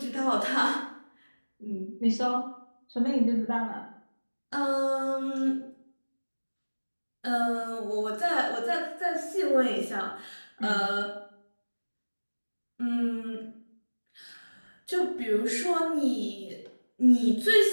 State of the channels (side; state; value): both; inverted; correlation -1.00